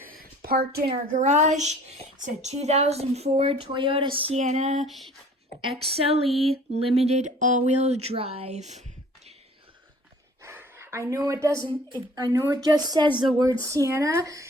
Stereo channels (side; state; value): both; normal; correlation 0.51